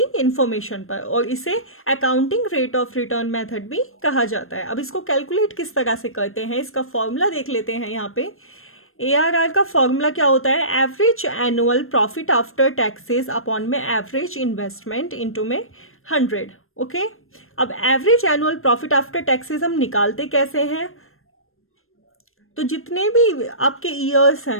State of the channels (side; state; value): right; late; 0.61 ms